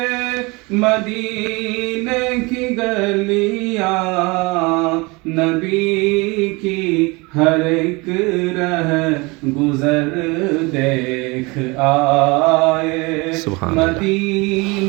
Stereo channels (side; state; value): left; quieter; 25.8 dB